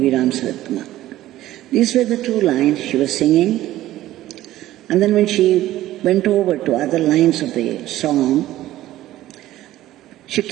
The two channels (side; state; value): left; quieter; 14.7 dB